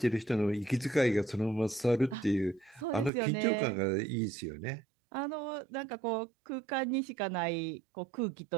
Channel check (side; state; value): left; drops out; at 3.1 s